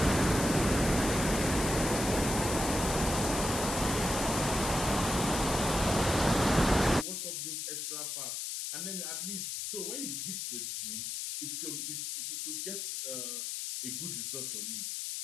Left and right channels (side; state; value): left; noise; hiss, 4 dB below the sound